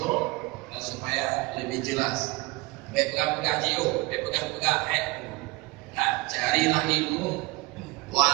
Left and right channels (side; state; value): left; quieter; 23.0 dB